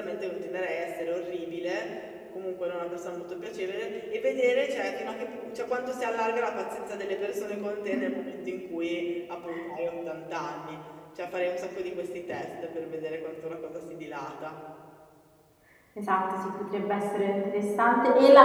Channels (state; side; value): identical; both; correlation 1.00